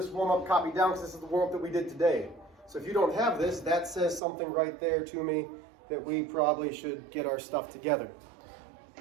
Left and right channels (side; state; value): left; drops out; at 4.2 s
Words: warm-up copied down because this is the warm-up that we did today. So if you don't have this, that says something right there to me that we probably should get our stuff together.